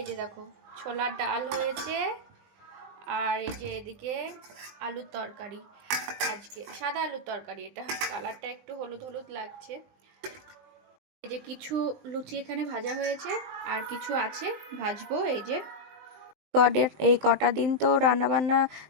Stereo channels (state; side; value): late; left; 20 ms